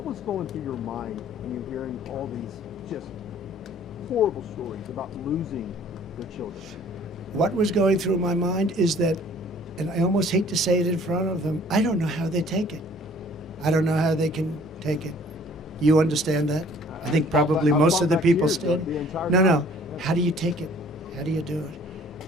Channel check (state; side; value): normal; both; correlation 0.54